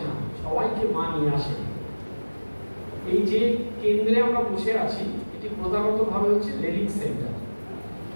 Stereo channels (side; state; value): both; inverted; correlation -1.00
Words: না, সবাইকে মা নিয়ে আসে। এই যে কেন্দ্রে আমরা বসে আছি, এটি প্রধানতভাবে হচ্ছে রেলিক সেন্টার।